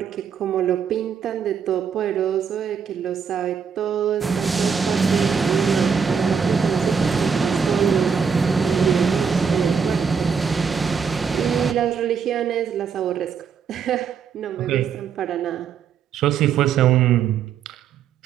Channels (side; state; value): left; quieter; 6.6 dB